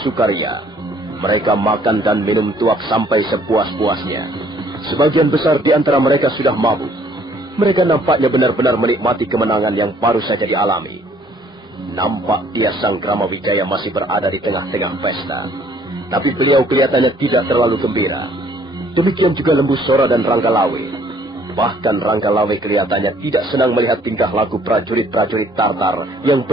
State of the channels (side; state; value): both; normal; correlation 0.60